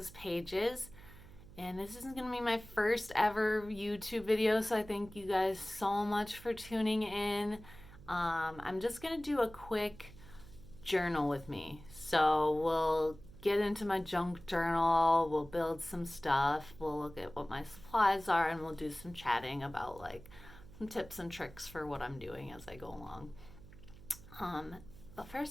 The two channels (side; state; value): right; noise; hum, 19 dB below the sound